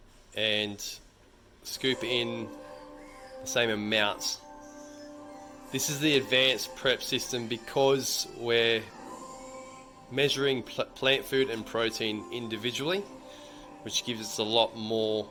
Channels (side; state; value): both; identical; correlation 1.00